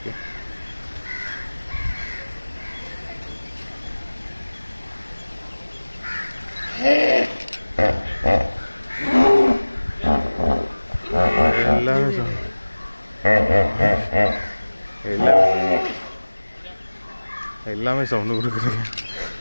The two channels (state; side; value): inverted; both; correlation -1.00